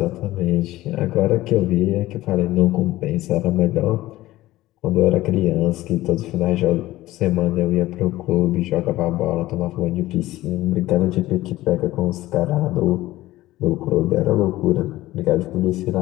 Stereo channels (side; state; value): right; quieter; 16.7 dB